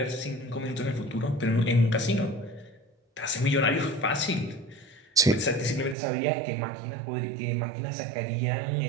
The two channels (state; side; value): drops out; left; at 6.0 s